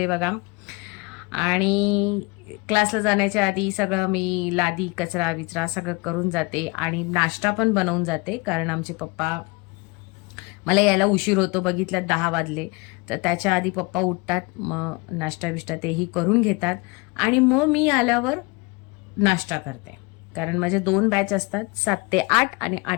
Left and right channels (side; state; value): right; quieter; 27.1 dB